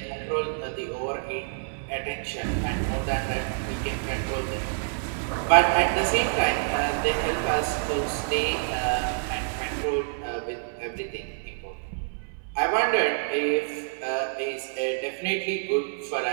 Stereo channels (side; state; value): left; silent; 60 dB below the other